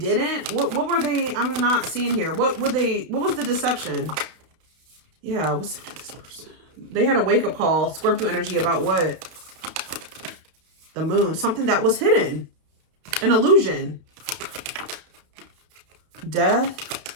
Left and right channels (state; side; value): late; left; 31 ms